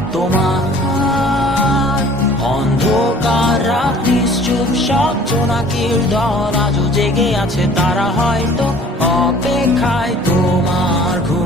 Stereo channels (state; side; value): normal; both; correlation 0.51